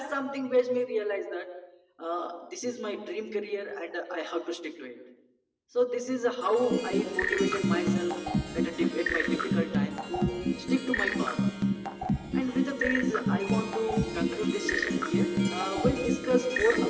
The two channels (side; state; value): both; identical; correlation 1.00